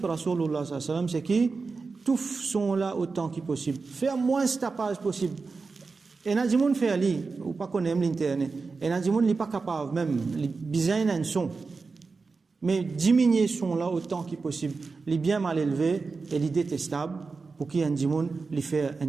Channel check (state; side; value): quieter; left; 4.4 dB